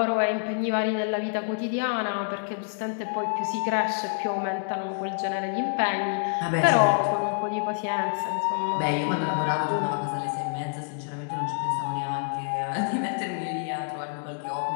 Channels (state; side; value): silent; right; digital silence